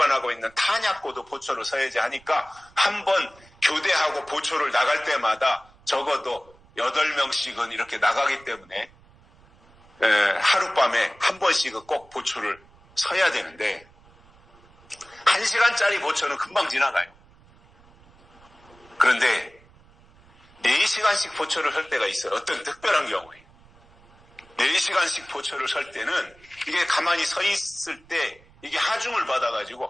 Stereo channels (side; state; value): right; noise; rumble, 28 dB below the sound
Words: 있는 탄약고도 보초를 서야지 하니까 한 번 교대하고 보초를 나갈 때마다 적어도 8명씩은 이렇게 나가기 때문에 하룻밤에 한 번씩은 꼭 보초를 서야 되는데 1시간짜리 보초는 금방 지나가요. 그런데 4시간씩 보초를 설 때가 있어요. 어떤 특별한 경우에 4시간씩 보초를 설 때는 이게 가만히 서 있을 때 이게 하중을